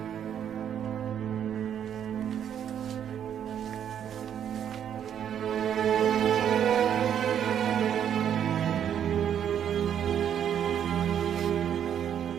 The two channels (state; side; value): quieter; left; 9.2 dB